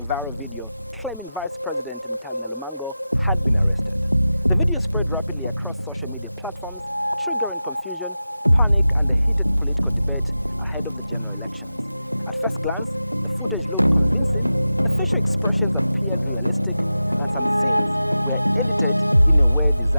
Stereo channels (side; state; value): both; inverted; correlation -0.93